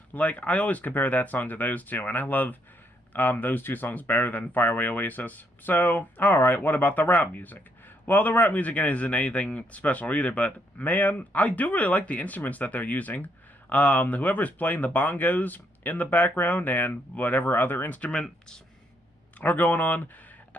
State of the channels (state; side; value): normal; both; correlation 0.73